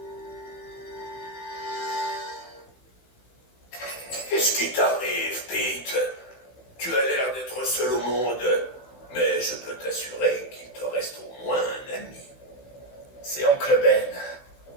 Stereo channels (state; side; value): late; right; 16 ms